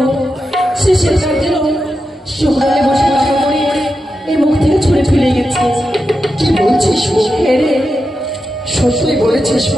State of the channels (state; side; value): normal; both; correlation 0.89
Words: সে কাজের সকালে বসে কাকা করে এর মুখ থেকে ছুঁড়ে ফেলে গেছে। কি বলছিস? রে সত্যই বলেছিস?